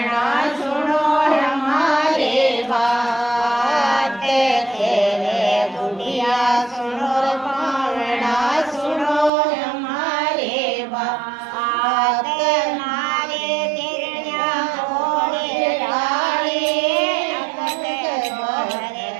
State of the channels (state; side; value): drops out; left; at 9.3 s